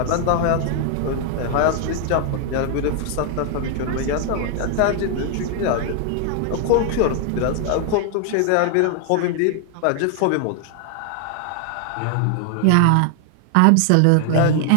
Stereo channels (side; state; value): both; different; correlation 0.00